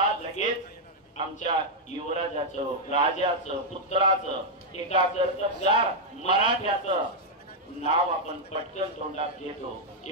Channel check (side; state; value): both; normal; correlation -0.02